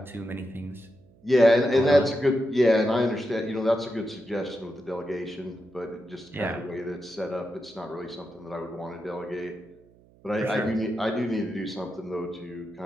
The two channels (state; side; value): noise; right; hum, 28 dB below the sound